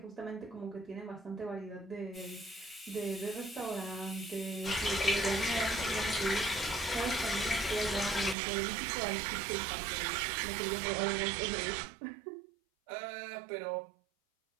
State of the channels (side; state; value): left; drops out; at 8.3 s